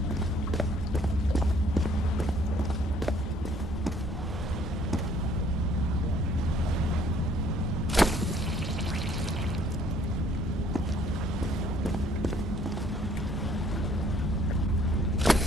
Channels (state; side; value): normal; both; correlation 0.61